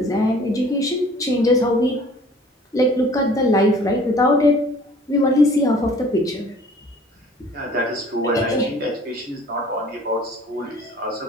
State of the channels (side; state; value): both; normal; correlation 0.51